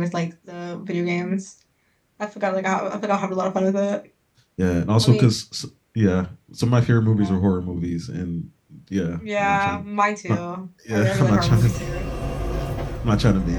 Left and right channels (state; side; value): identical; both; correlation 1.00